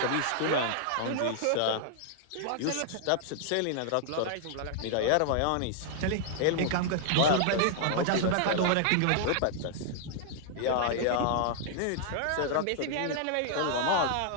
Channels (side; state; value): both; different; correlation -0.01